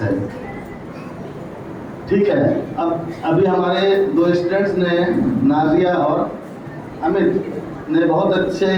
है। ठीक है। अब अभी हमारे 2 स्टूडेंट्स ने, नाजिया और अमित ने बहुत अच्छे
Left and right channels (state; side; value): identical; both; correlation 1.00